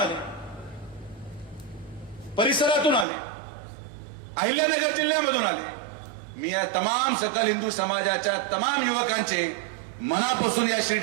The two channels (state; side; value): drops out; left; at 3.1 s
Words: परिसरातून आले, अहिल्यानगर जिल्ह्यामधून आले. मी या तमाम सकल हिंदू समाजाच्या तमाम युवकांचे मनापासून या